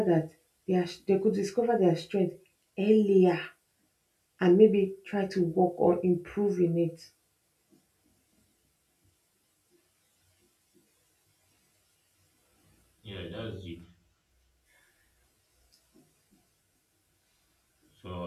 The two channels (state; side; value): identical; both; correlation 1.00